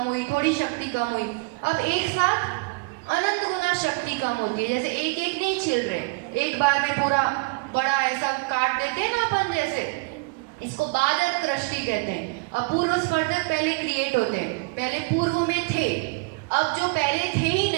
हुई, थोड़ी शक्ति कम हुई, अब एक साथ अनंत गुना शक्ति कम होती है। जैसे एक नहीं छिल रहे, एक बार में पूरा बड़ा ऐसा काट देते हैं ना अपन, जैसे इसको बादर कृष्टि कहते हैं। अपूर्व स्पर्धक पहले क्रिएट होते हैं, पहले पूर्व में थे, अब जो पहले थे ही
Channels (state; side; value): quieter; left; 28.1 dB